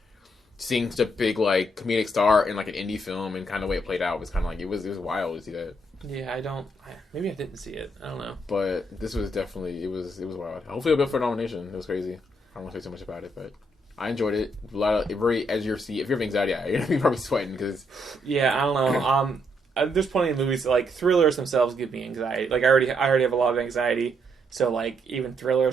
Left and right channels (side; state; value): both; normal; correlation 0.75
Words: seeing such a big like comedic star in like an indie film and kind of the way it played out was kind of like it was wild to see that. Yeah, maybe I didn't see it. I don't know. But this was definitely, it was wild. Hopefully it'll be up for a nomination. It was crazy. I don't want to say too much about it, but I enjoyed it. A lot of, very edge of your seat. If you have anxiety, you're going to be probably sweating because... Yeah, I don't know. There's plenty of movies, like, thrillers themselves give me anxiety. Like, I already have a lot of anxiety, so, like, even